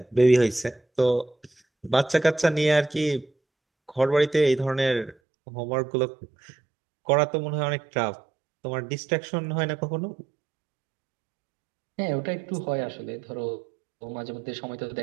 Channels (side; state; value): left; drops out; at 5.2 s